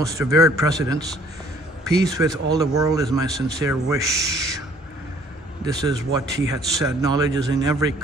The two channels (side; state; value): both; normal; correlation 0.58